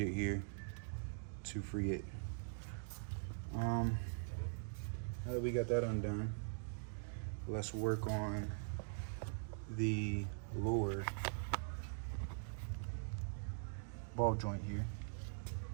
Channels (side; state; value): left; silent; digital silence